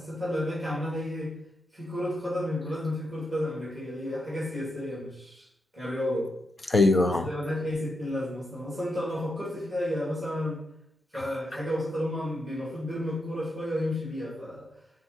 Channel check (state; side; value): normal; both; correlation 0.84